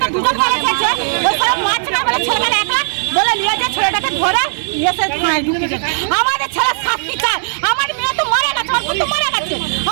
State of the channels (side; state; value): left; silent; 69 dB below the other